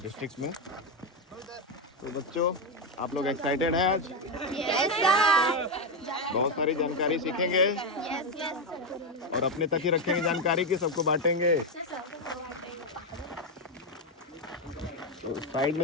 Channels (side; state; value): both; normal; correlation 0.06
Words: डिस्ट्रिक्ट में। तो बच्चों, आप लोग एक्साइटेड हैं आज? Yes sir. बहुत सारी जानकारी सीखेंगे यस यस। और अपने तक ही रखेंगे जानकारी की, सबको बांटेंगे। तो साइड